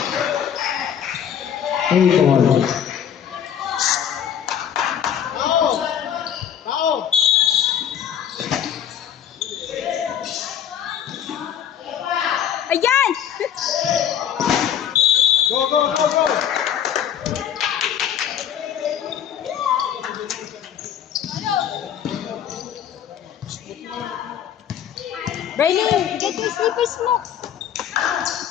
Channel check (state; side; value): quieter; right; 9.2 dB